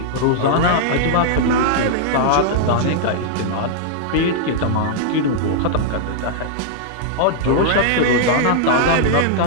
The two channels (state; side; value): different; both; correlation -0.01